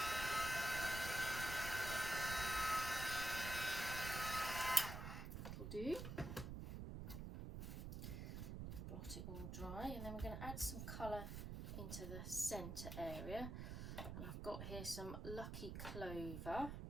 That'll do. Blot it all dry, and then we're going to add some colour into the centre area. And I've got here some Lucky Clover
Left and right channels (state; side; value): noise; right; rumble, 5 dB below the sound